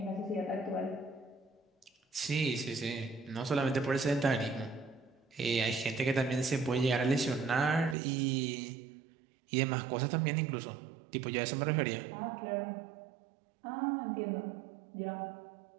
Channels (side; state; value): left; drops out; at 8.0 s